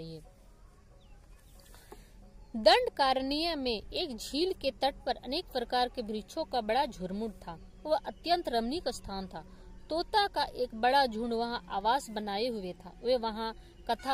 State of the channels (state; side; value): identical; both; correlation 1.00